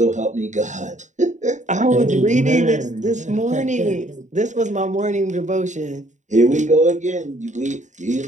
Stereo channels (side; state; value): left; late; 0.35 ms